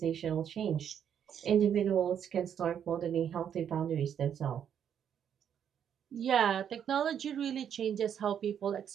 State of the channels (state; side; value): quieter; left; 8.7 dB